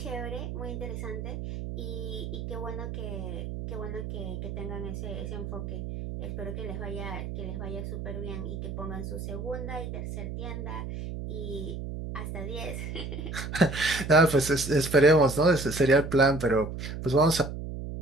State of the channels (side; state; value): right; noise; hum, 6 dB below the sound